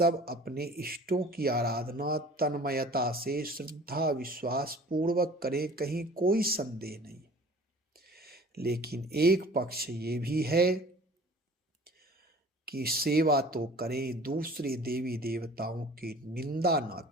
अपने इष्टों की आराधना तन्मयता से श्रद्धा विश्वास पूर्वक करें, कहीं कोई संदेह नहीं। लेकिन एक पक्ष ये भी है कि सेवा तो करें, दूसरे देवी देवताओं की निंदा ना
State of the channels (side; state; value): both; normal; correlation 0.47